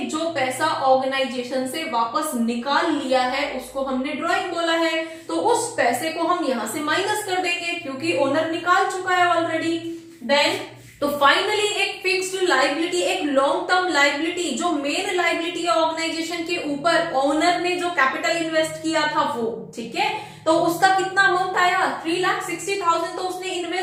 जो पैसा ऑर्गेनाइजेशन से वापस निकाल लिया है उसको हमने ड्रॉइंग बोला है, तो उस पैसे को हम यहां से माइनस कर देंगे क्योंकि ओनर निकाल चुका है ऑलरेडी। देन तो फाइनली एक फिक्स्ड लायबिलिटी, एक लॉन्ग टर्म लायबिलिटी, जो मेन लायबिलिटी है ऑर्गेनाइजेशन के ऊपर, ओनर ने जो कैपिटल इन्वेस्ट किया था वो, ठीक है, तो उसका कितना अमाउंट आया, 3,60,000 तो उसने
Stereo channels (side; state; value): both; identical; correlation 1.00